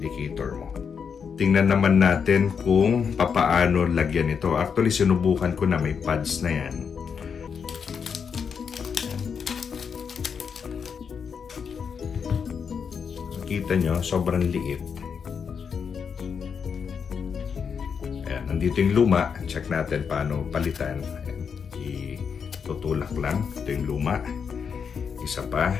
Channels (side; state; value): right; quieter; 6.5 dB